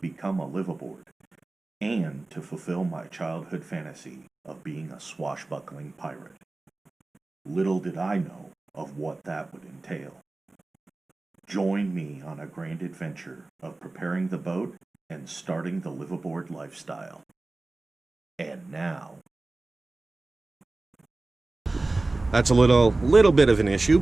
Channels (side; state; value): left; quieter; 3.1 dB